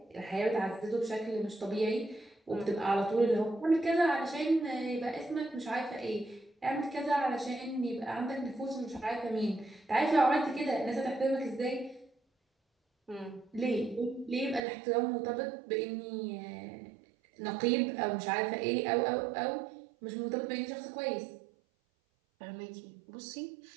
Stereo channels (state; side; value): drops out; left; at 14.7 s